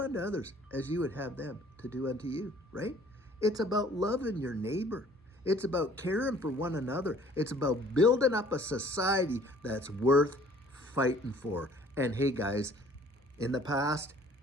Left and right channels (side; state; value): both; normal; correlation 0.55